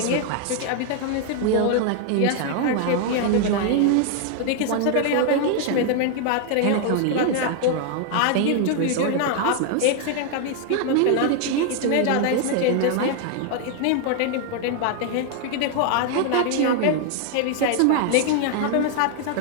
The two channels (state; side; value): different; both; correlation 0.00